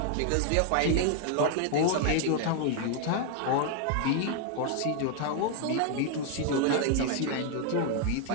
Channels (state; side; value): different; both; correlation 0.00